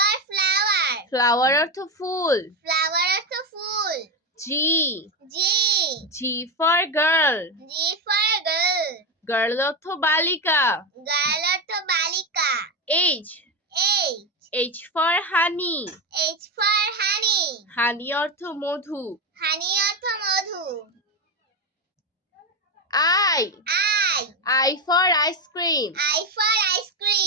flower. Flower অর্থ ফুল। Flower অর্থ ফুল। G G. G for girl. G for girl. Girl অর্থ বালিকা। Girl অর্থ বালিকা। H H. H for honey. H for honey. Honey অর্থ মধু। Honey অর্থ মধু। I I. I for ice cream. I for ice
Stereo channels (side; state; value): both; normal; correlation 0.13